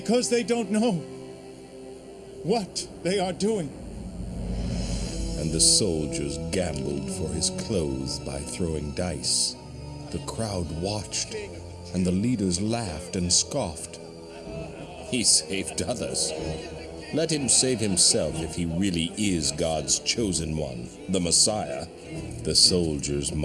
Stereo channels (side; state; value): both; identical; correlation 1.00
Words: they don't know what they are doing. And the soldiers gambled for his clothes by throwing dice. The crowd watched, and the leaders laughed and scoffed. He saved others. Let him save himself if he really is God's chosen one, the Messiah. The soldiers